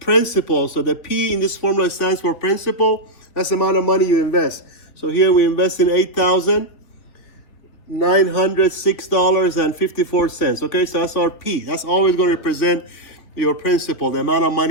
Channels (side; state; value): right; late; 3.5 ms